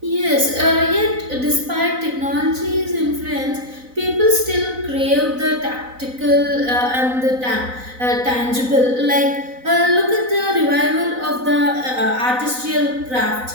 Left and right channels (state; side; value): late; left; 4.0 ms